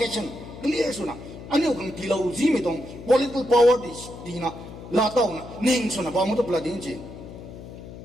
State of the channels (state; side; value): noise; left; hum, 14 dB below the sound